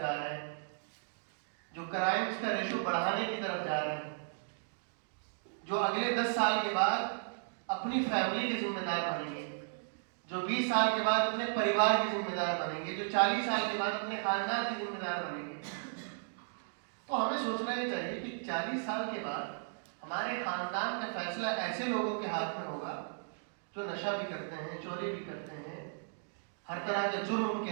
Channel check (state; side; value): silent; left; digital silence